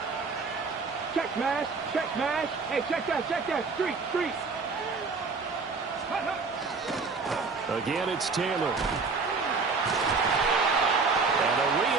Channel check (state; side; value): quieter; left; 4.5 dB